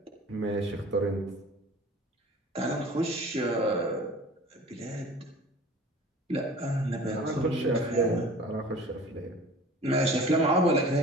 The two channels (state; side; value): normal; both; correlation 0.43